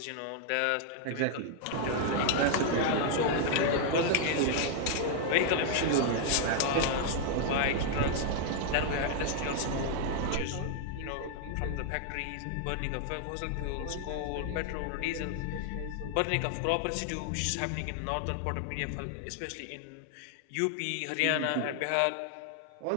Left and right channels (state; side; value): different; both; correlation 0.00